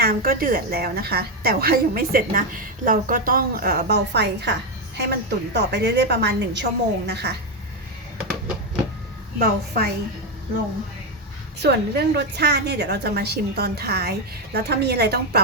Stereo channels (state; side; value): normal; both; correlation 0.07